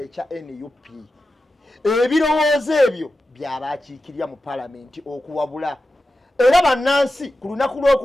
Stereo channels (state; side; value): normal; both; correlation 0.92